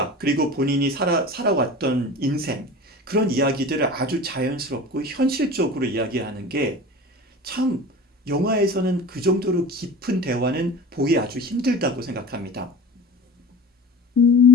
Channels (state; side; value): normal; both; correlation 0.35